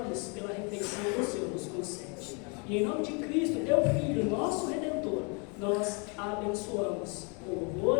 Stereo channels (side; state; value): right; quieter; 34.3 dB